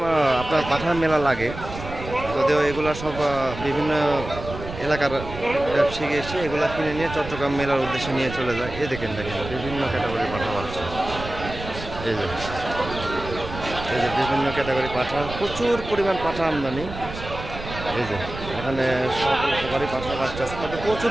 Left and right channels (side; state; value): right; noise; rumble, 10 dB below the sound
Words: আপনার পাঠার মেলা লাগে, যদিও এগুলো সব বিভিন্ন এলাকার ব্যবসায়ী এসে এগুলো কিনে নিয়ে চট্টগ্রাম মেলার উদ্দেশ্যে নিয়ে চলে যায়। দেখেন বিভিন্ন ক্যাটাগরি পাঠা পাচ্ছে। এই যে বিভিন্ন ক্যাটাগরি পাঠা, প্রচুর পরিমাণ পাঠা আমদানি। এই যে এখানে সব উপকারী পাঠা বাচ্চা আছে, তবে প্রচুর